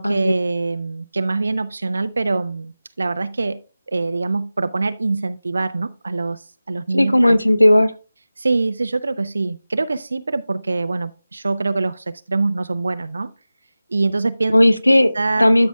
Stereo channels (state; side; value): inverted; both; correlation -0.96